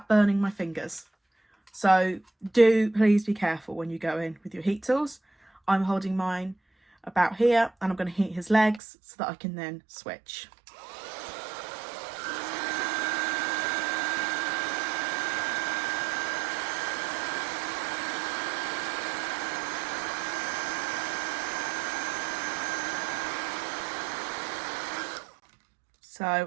burning my fingers. So do please be careful when you go in with your heat tools. I'm holding mine about here and I'm going to heat his legs so that I can then switch.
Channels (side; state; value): left; drops out; at 8.8 s